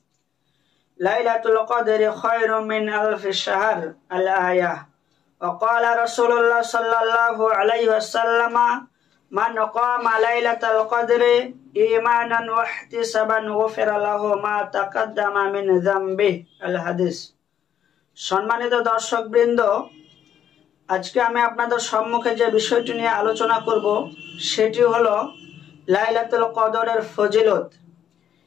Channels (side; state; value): right; quieter; 9.5 dB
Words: লাইলাতুল কদরি খায়রুম মিন আলফি শাহর। আল আয়াহ। ওয়া ক্বালা রাসূলুল্লাহ সাল্লাল্লাহু আলাইহি ওয়াসাল্লাম মান ক্বামা লাইলাতুল কদরি ঈমানান ওয়া ইহতিসাবান গুফিরা লাহু মা তাকাদ্দামা মিন যামবিহি। আল হাদিস। সম্মানিত দর্শকবৃন্দ, আজকে আমি আপনাদের সম্মুখে যে বিষয়টি নিয়ে আলোচনা করব সেটি হলো লাইলাতুল কদরের ফজিলত।